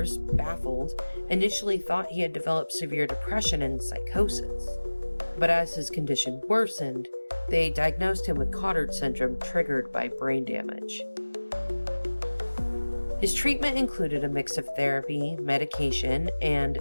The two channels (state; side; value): inverted; both; correlation -1.00